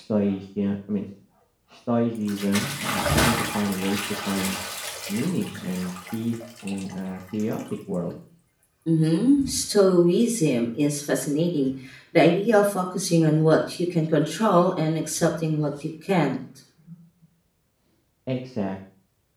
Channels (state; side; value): identical; both; correlation 1.00